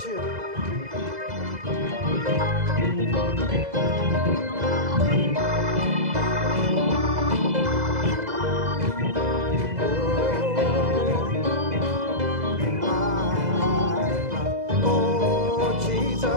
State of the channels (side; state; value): left; late; 2.0 ms